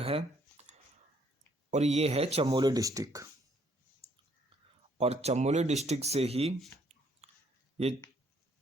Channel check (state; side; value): normal; both; correlation 0.66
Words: है और ये है चमोली डिस्ट्रिक्ट, और चमोली डिस्ट्रिक्ट से ही ये